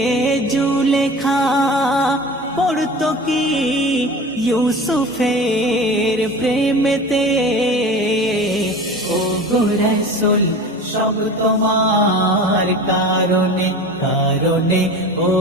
জুলেখা পড়তো কি ইউসুফের প্রেমেতে ও গো রাসূল সব তোমার কারণে কারণে ও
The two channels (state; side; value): normal; both; correlation 0.35